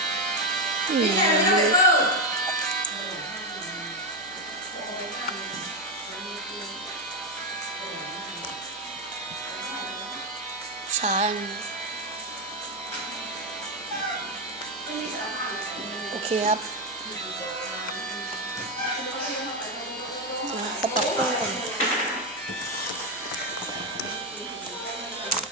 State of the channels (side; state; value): right; noise; hum, 28 dB below the sound